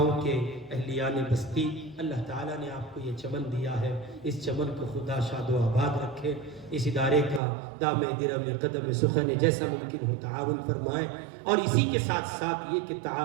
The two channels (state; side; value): drops out; left; at 7.4 s